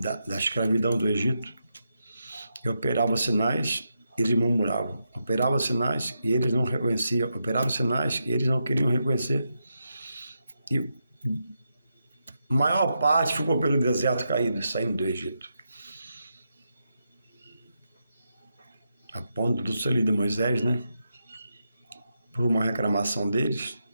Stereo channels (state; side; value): inverted; both; correlation -0.85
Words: escravidão do Egito, e operava sinais, eles murmuravam, operava sinais e eles não reconheciam, operava sinais e eles não queriam reconhecer, e a maior parte ficou pelo deserto caído, saindo do Egito. A ponto do selo de Moisés, né? Por uma reclamação deles,